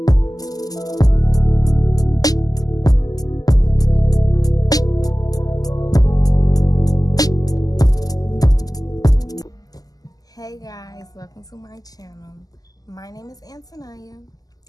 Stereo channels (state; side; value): late; right; 0.18 ms